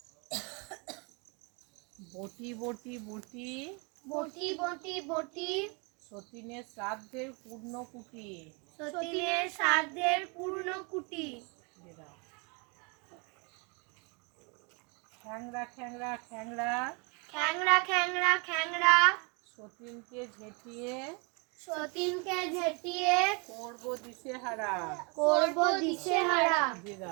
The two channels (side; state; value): left; quieter; 32.3 dB